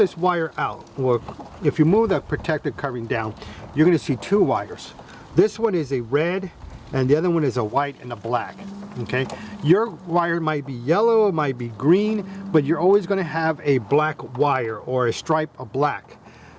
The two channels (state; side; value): identical; both; correlation 1.00